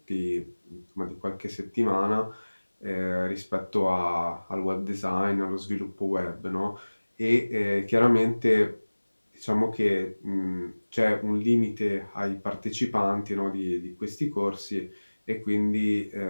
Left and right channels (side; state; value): both; inverted; correlation -1.00